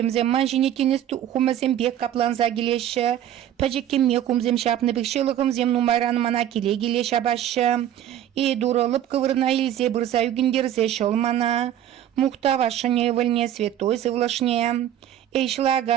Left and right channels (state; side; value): quieter; left; 11.2 dB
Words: манжіне тенес хумызем бек капланза келеші. Пәжеккеме хумзем шапны бек шылығымзем нумайранымана келе келе шабашы. И дурылып кывырна елзе бұрза үгіндерзе шолмана. Мухтава шаневальне святой Всевышний.